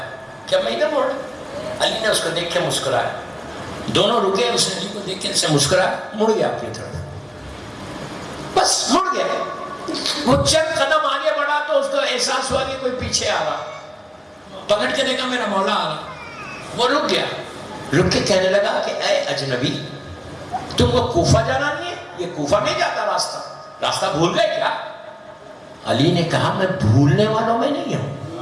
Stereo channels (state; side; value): identical; both; correlation 1.00